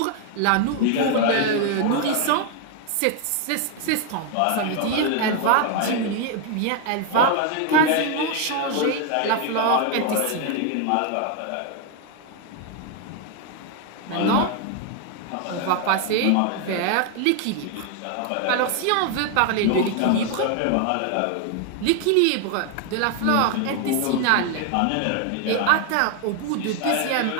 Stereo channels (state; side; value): different; both; correlation 0.01